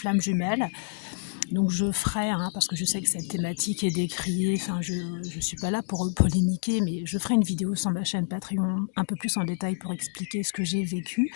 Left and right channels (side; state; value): right; silent; digital silence